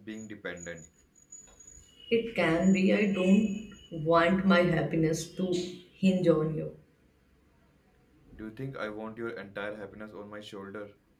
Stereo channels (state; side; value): identical; both; correlation 1.00